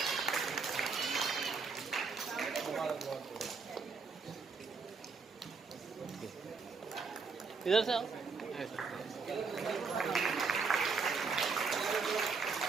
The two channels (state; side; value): quieter; left; 4.9 dB